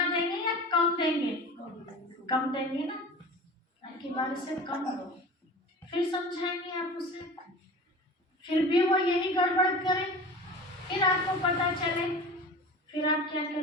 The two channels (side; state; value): both; normal; correlation 0.36